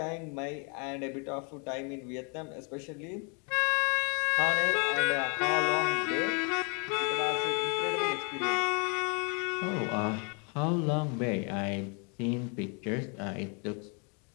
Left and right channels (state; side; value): quieter; right; 35.9 dB